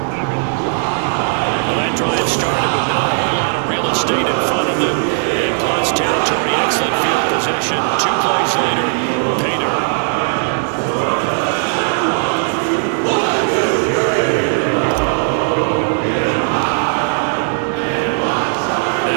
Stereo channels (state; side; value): silent; left; 59 dB below the other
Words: that drive started with not a whole lot of real estate in front of them. In Klutz territory, excellent field position. 2 plays later, pay dirt.